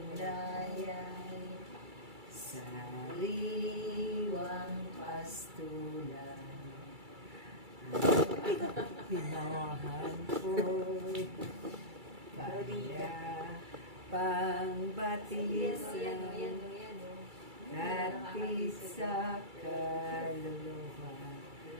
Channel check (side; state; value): left; late; 2.3 ms